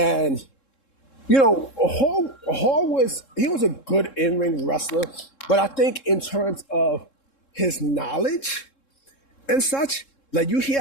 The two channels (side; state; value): right; late; 3.7 ms